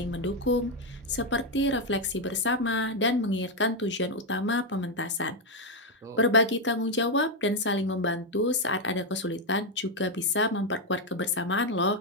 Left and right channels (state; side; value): normal; both; correlation 0.04